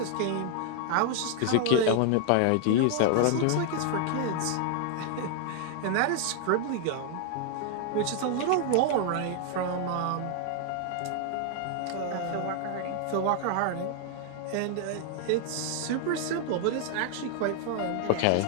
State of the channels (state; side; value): different; both; correlation 0.00